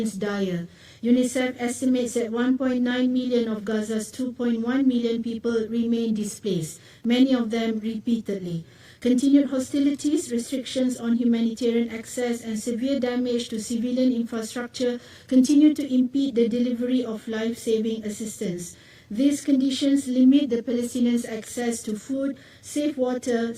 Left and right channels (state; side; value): identical; both; correlation 1.00